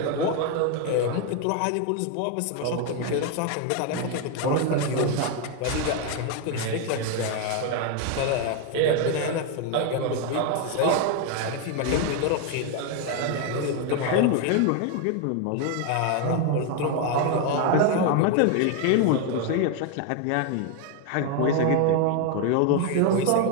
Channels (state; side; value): different; both; correlation 0.01